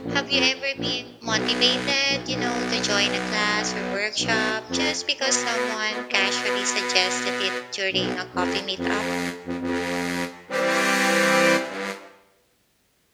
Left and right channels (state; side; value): identical; both; correlation 1.00